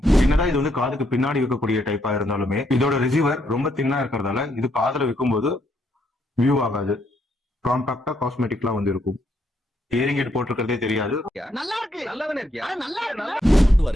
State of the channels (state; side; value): normal; both; correlation 0.74